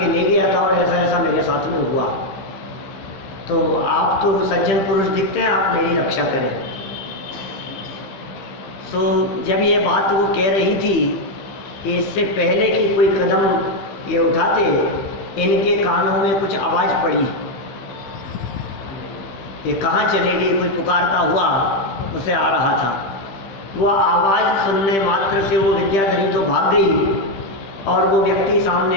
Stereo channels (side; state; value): right; late; 15 ms